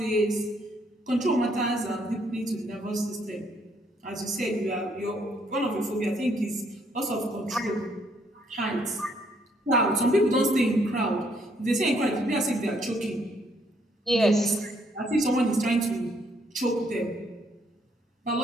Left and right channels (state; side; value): normal; both; correlation 0.69